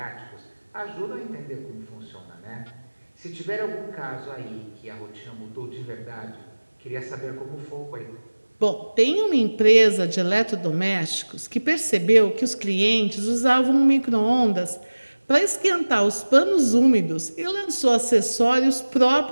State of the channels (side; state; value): both; inverted; correlation -1.00